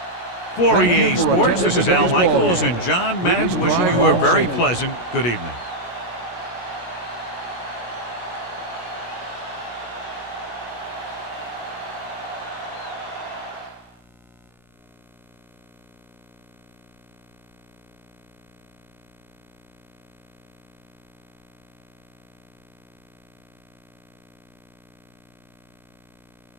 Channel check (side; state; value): right; late; 17 ms